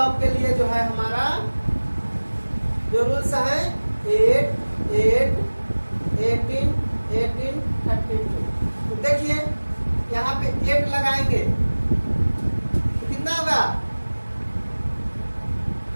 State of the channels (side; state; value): both; inverted; correlation -1.00